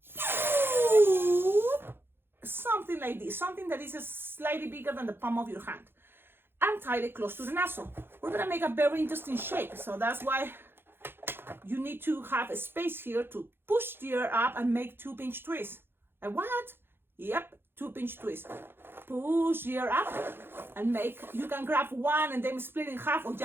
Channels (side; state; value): left; late; 0.10 ms